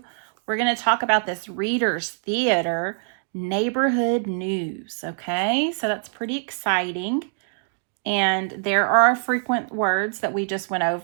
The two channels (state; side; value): silent; left; digital silence